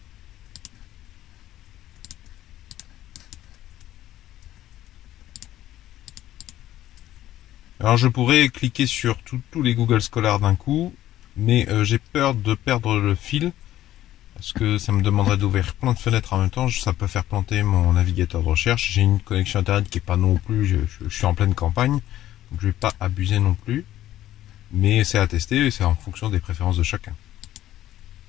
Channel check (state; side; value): quieter; right; 13.4 dB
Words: Alors, je pourrais cliquer sur tous les Google Scholar d'un coup, mais j'ai peur de perdre le fil, parce que ça me demanderait d'ouvrir plein de fenêtres en même temps. Ça peut faire planter mon navigateur de recherche. J'ai une connexion internet qui est pas non plus, je suis en pleine campagne, donc je vais pas abuser non plus. Mais c'est à tester et c'est en fonction des préférences de chacun.